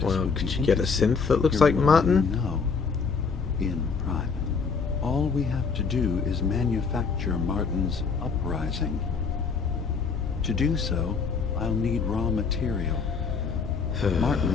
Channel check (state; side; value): quieter; right; 5.3 dB